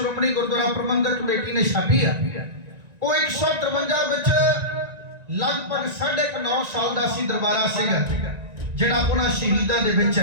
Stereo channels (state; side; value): late; left; 1.9 ms